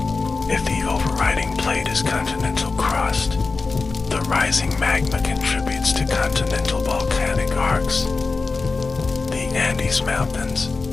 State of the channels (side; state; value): right; quieter; 4.1 dB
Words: If the overriding plate is continental crust, the rising magma contributes to continental volcanic arcs. The Andes Mountains,